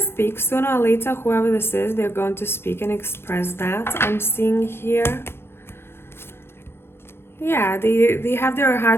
sooner or later. Whoever this is, they're going to speak and express that. I'm seeing here. Yeah, they have their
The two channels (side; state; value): right; late; 0.11 ms